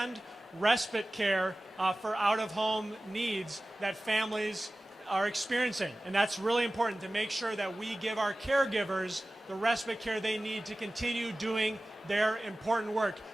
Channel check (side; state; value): both; normal; correlation 0.97